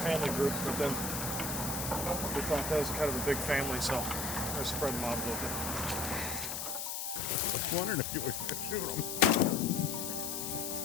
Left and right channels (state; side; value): noise; left; hiss, 4 dB below the sound